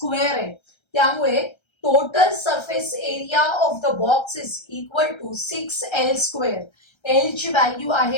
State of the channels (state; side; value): late; right; 1.3 ms